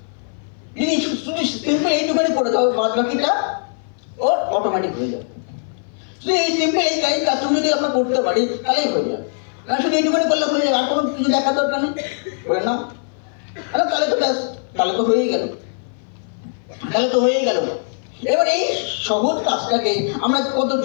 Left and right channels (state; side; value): silent; right; 57 dB below the other